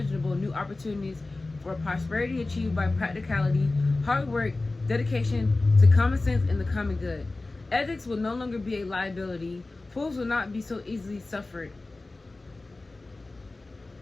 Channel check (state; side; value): quieter; right; 3.2 dB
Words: new opportunities for prosperity achieved by practicality, hard work, dedication to common sense and the common good. Ethics will no longer be a liability. Fools will not be so easily suffered.